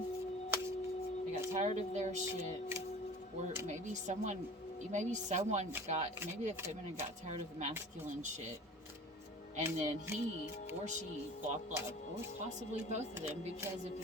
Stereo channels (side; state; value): both; normal; correlation 0.41